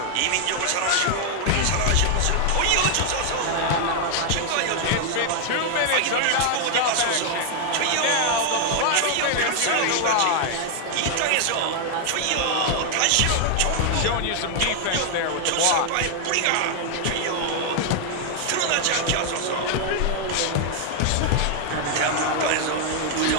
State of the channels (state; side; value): different; both; correlation 0.00